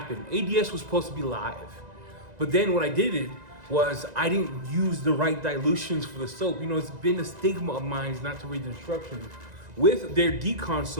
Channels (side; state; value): left; late; 1.9 ms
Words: ADS was supposed to be live. But then what I did was I didn't use the right dilutions for the soap. You know, it's been a stigma of mine not to read the instructions. With their decon